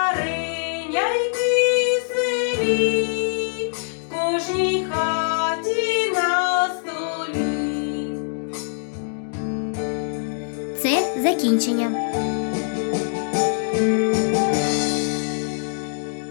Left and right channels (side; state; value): right; silent; digital silence